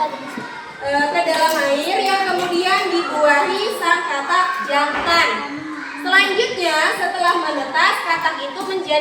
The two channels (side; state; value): both; identical; correlation 1.00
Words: ke dalam air yang kemudian dibuahi sang katak jantan. Selanjutnya setelah menetas, katak itu